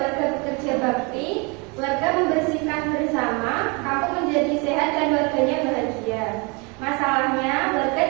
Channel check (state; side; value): quieter; left; 30.5 dB